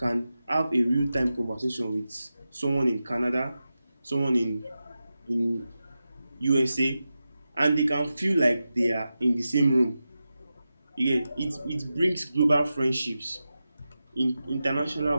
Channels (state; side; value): inverted; both; correlation -0.92